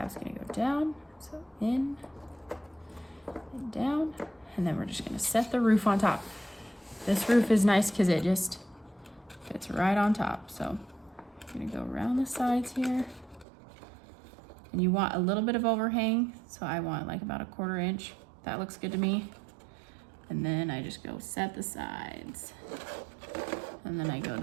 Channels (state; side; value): drops out; left; at 13.5 s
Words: gonna go down, so in and down. And then we're just gonna set the roof on top. This roof is nice because it just fits right on top. So I'm gonna go around the sides here. And you want a little bit of overhang. So I want like about 1/4 inch. That looks good to me. And then I just go set the sides. And then I go to